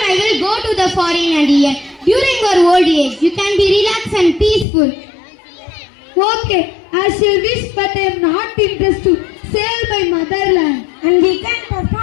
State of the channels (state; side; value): drops out; right; at 4.7 s